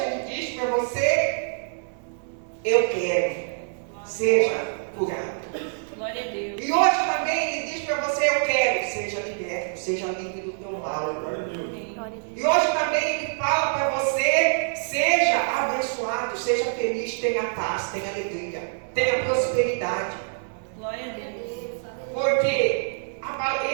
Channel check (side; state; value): left; silent; 61 dB below the other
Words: Ele diz para você: eu quero, seja curado. Glória a Deus. E hoje também Ele diz para você: eu quero, seja liberto, seja livre do teu mal. Glória a Deus. E hoje também Ele fala para você: seja abençoado, seja feliz, tenha paz, tenha alegria, tenha prosperidade. Glória a Deus. Porque